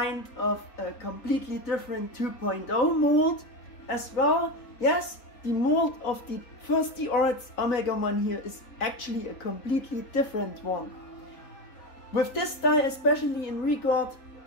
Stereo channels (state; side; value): late; right; 3.8 ms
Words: of a completely different 2.0 mold as well. Yes, the mold of the first D-Arts Omegamon here is actually a completely different one. With this style, especially in regard